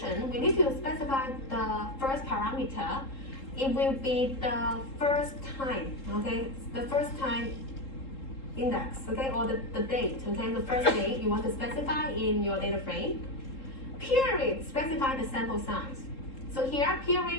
we need to specify the first parameter. It will be the first time, okay, the first time index, okay, or the date, okay, the first date you want to specify in your data frame. Period, specify the sample size. So here,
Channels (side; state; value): right; late; 3.7 ms